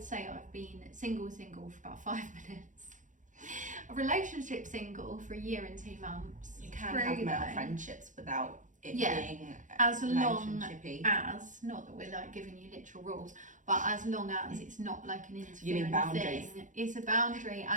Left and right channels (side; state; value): left; late; 0.37 ms